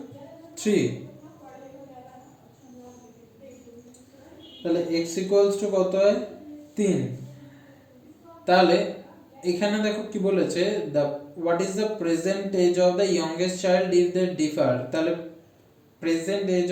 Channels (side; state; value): both; identical; correlation 1.00